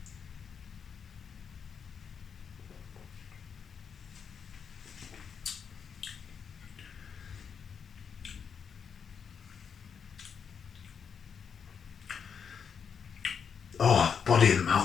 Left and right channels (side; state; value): right; quieter; 6.8 dB